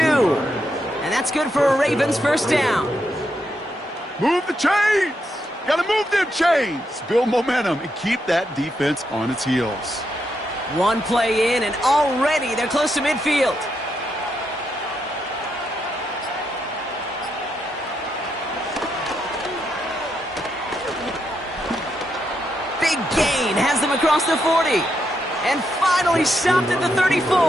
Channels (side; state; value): both; normal; correlation 0.81